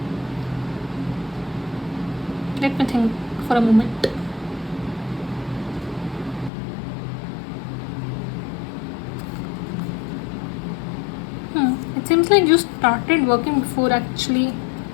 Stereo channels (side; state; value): right; drops out; at 6.5 s